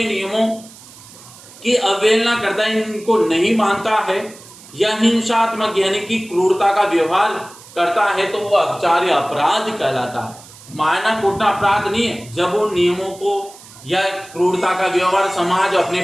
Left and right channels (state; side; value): noise; right; hiss, 20 dB below the sound